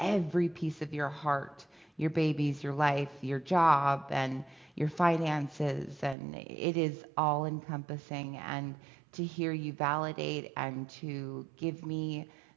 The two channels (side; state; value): left; drops out; at 6.2 s